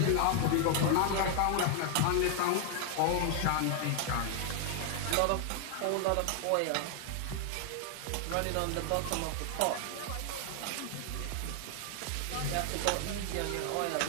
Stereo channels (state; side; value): different; both; correlation 0.00